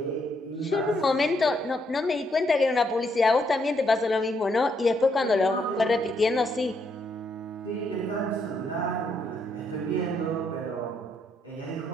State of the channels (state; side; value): normal; both; correlation 0.75